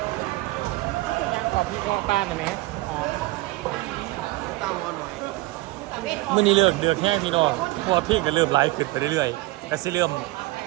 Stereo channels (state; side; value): quieter; left; 20.3 dB